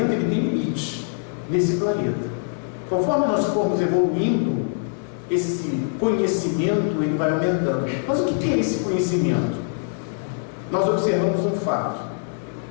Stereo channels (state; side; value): silent; right; 63 dB below the other